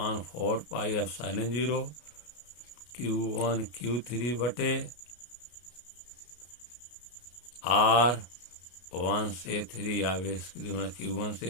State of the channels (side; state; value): right; late; 33 ms